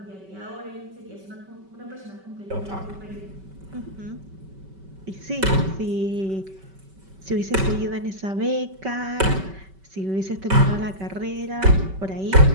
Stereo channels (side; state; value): left; late; 5.2 ms